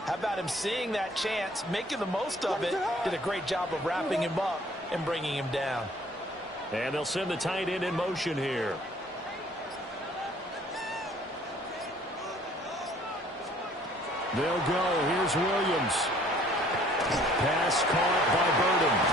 How about him seeing that chance, making the most of it, did a great job of wrapping him up and bringing him down. And they'll send the tight end in motion here. They'll go. Here's Williams. Pass caught by Burden.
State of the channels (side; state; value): both; normal; correlation 0.57